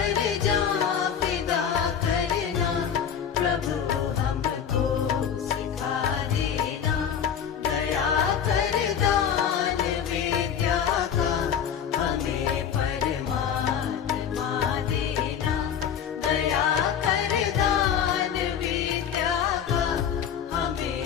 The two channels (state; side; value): quieter; right; 8.2 dB